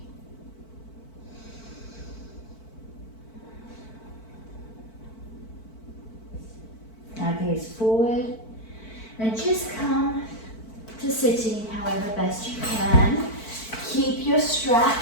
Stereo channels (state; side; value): late; right; 4.5 ms